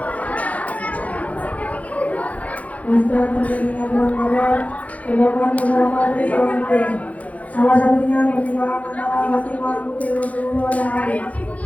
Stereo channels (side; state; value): right; late; 0.069 ms